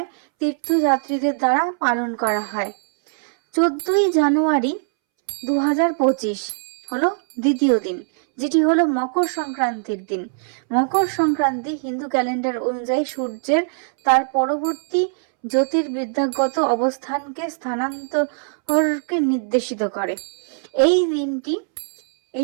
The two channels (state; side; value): silent; left; 65 dB below the other